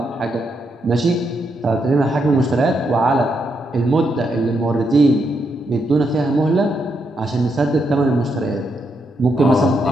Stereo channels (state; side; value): normal; both; correlation 0.80